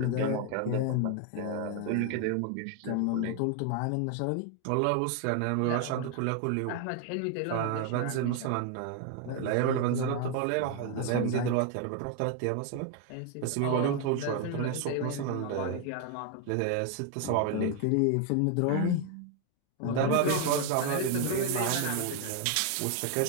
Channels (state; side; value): different; both; correlation 0.01